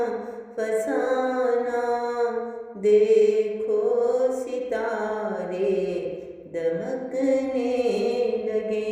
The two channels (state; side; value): identical; both; correlation 1.00